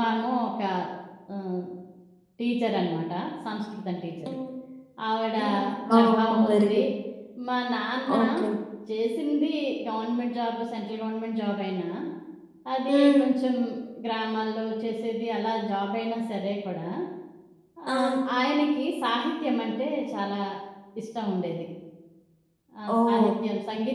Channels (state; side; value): identical; both; correlation 1.00